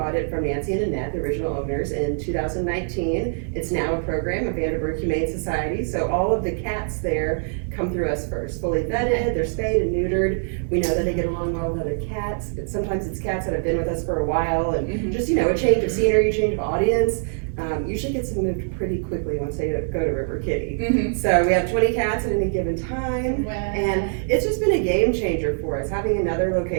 it from Nancy and Annette, the original owners, in 2019. It's now a program of Vanderburgh Humane Society, so all of the cats there come through us first, fully vetted, they're spayed and neutered. We know that they get along well with other cats, but sometimes it's cats that have been with us for a while, and Mhm. just, you know, a change of scenery, change of audience. Usually gets them moved pretty quickly once they go to River Kitty. Mhm. So we have 20 cats at any given time, Wow. and it's just been a game changer for us, having another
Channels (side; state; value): left; silent; digital silence